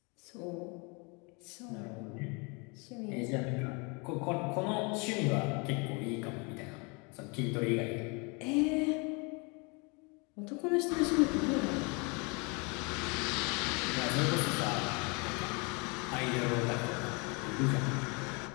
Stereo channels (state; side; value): quieter; right; 31.2 dB